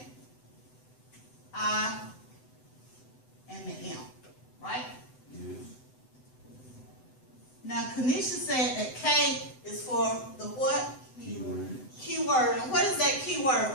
I, and the M. Right? Yes. Now, Kanisha said that K is for the what? Keyword. Keyword. And what is that keyword?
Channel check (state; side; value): late; right; 7.9 ms